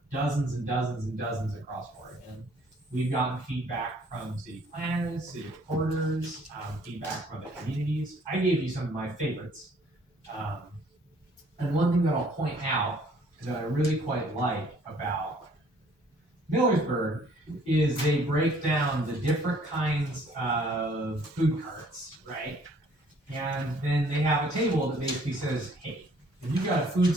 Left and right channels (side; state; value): left; late; 1.2 ms